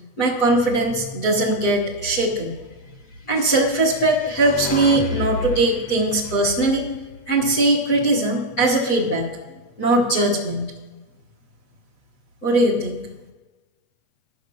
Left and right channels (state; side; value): late; right; 7.8 ms